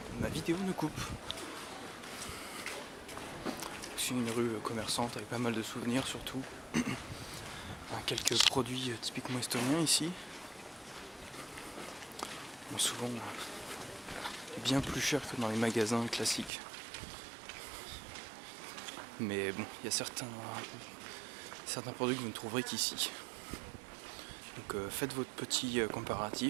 ma vidéo ne coupe. C'est une rue commerçante avec pas mal de souvenirs surtout. Quelques produits typiquement estoniens ici. Bon, souvent bien plus cher que dans les magasins classiques. Mais bon, il y a certains produits que vous ne trouverez qu'ici. Donc faites votre petit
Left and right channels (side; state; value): left; drops out; at 16.5 s